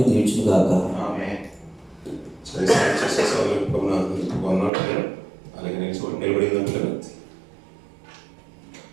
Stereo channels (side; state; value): left; drops out; at 4.7 s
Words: దీవించును గాక. అలాగే నిలబడిందా పిల్లలు?